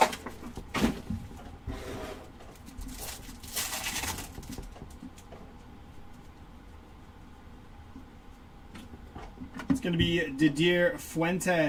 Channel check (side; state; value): both; identical; correlation 1.00